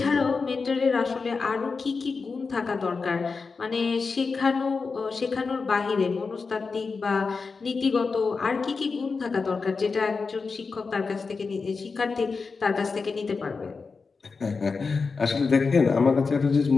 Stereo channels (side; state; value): right; quieter; 4.6 dB